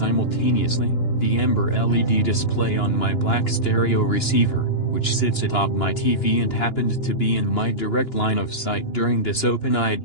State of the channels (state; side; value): late; right; 2.9 ms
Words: the amber LED display on my black stereo receiver, which sits atop my TV and happened to be in my direct line of sight during this open-eyed